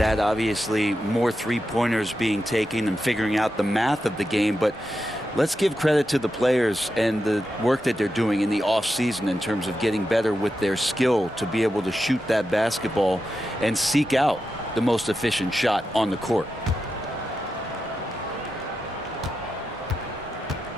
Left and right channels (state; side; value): normal; both; correlation 0.88